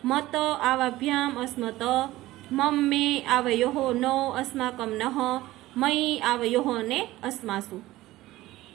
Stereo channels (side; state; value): left; quieter; 16.9 dB